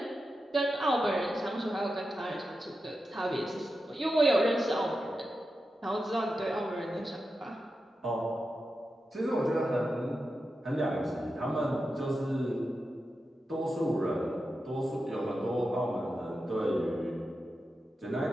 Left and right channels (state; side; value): normal; both; correlation 0.90